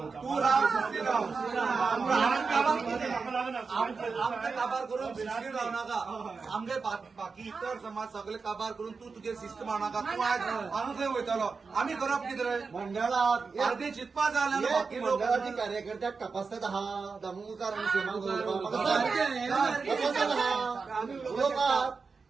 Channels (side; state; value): left; quieter; 4.8 dB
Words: तू राव शिस्तीन राव म्हाका लागून आमचे काबार करून शिस्तीन राव नाका आमचे बाकी इतर समाज सगळे काबार करून तू तुगे शिस्त मारनाका तू आज हांव थंय वयतलो आमी करप कितें रे मंडळात पार्टी चिंतपा जाय जाल्यार बाकी लोक मंडळाची कार्यकर्त्याक तपासतात हा दामोदर आणि सीमा उलोवपाक